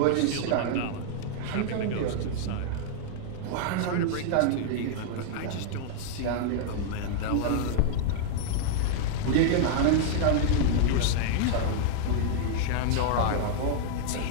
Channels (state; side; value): different; both; correlation -0.01